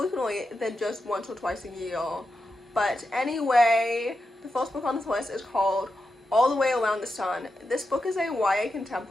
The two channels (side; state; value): both; normal; correlation 0.88